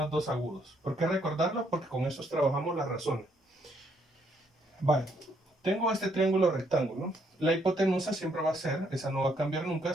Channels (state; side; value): normal; both; correlation 0.71